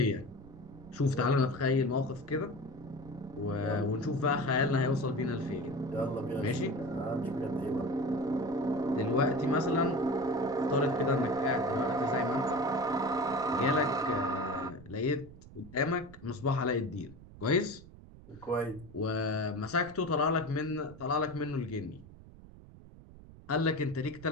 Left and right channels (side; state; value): right; noise; rumble, 19 dB below the sound